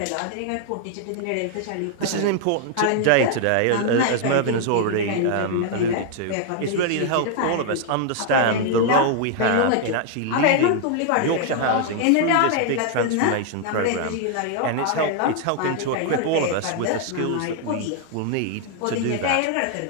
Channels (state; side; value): different; both; correlation 0.00